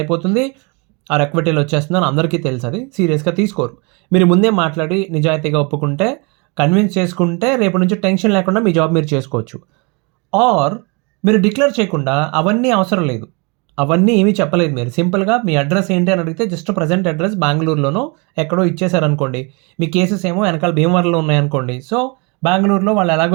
ఆ ఎక్విటీలో వచ్చేస్తుందని అందరికీ తెలుసు. అది సీరియస్గా తీసుకోరు. మీరు ముందే మాట్లాడి నిజాయితీగా ఒప్పుకుంటే, కన్విన్స్ చేసుకుంటే రేపు నుంచి టెన్షన్ లేకుండా మీ జాబ్ మీరు చేసుకోవచ్చు. ఆర్ మీరు డిక్లేర్ చేయకుండా అవన్నీ అవసరం లేదు, అవన్నీ ఏమీ చెప్పలేదు, మీరు సింపుల్గా మీ అడ్రస్ ఏంటి అని అడిగితే జస్ట్ ప్రజెంట్ అడ్రస్ బెంగళూరులోనో ఎక్కడో ఇచ్చేసారనుకోండి, మీ కేసెస్ ఏమో వెనకాల భీమవరంలో ఉన్నాయనుకోండి, సో బెంగళూరులో వాళ్ళు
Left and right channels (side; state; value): left; quieter; 30.7 dB